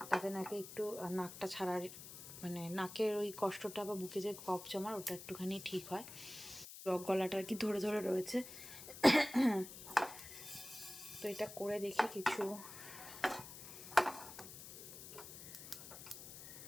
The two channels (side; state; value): left; noise; hiss, 13 dB below the sound